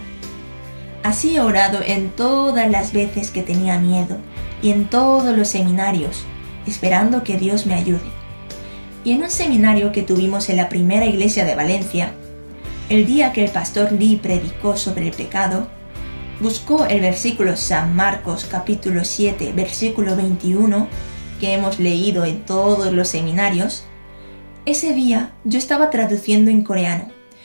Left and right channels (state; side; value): inverted; both; correlation -1.00